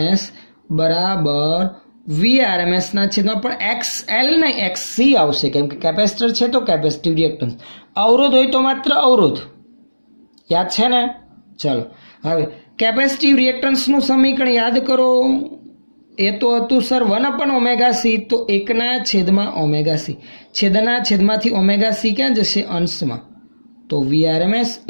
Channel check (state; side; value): inverted; both; correlation -1.00